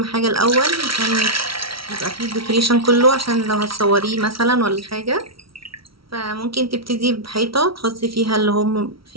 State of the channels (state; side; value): late; left; 0.75 ms